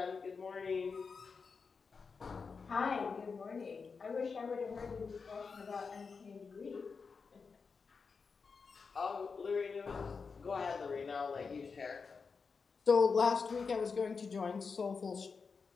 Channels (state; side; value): quieter; right; 5.1 dB